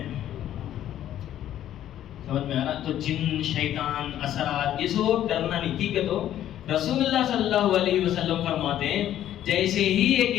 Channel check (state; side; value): quieter; right; 11.7 dB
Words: سمجھ میں آ رہا؟ تو جن، شیطان، اثرات، یہ سب ڈرنا نہیں. ٹھیک ہے، تو رسول اللہ صلی اللہ علیہ وسلم فرماتے ہیں جیسے ہی ایک